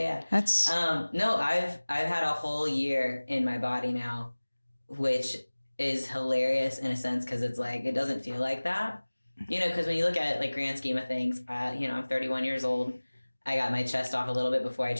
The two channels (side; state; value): both; inverted; correlation -1.00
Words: That's no, I've had a whole year in my body now, which is hilarious in a sense because it's like it doesn't feel like that, you know. Because when you look at it, like grand scheme of things, I'm 31 years old. I got my chest off a little bit before I